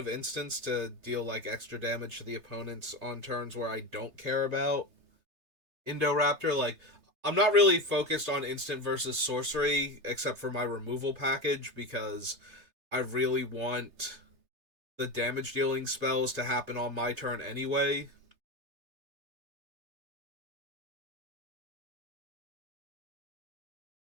instants to deal like extra damage to the opponents on turns where I don't care about Indoraptor. Like, I'm not really focused on instant versus sorcery except for my removal package because I really want the damage dealing spells to happen on my turn anyway.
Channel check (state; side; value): late; left; 3.3 ms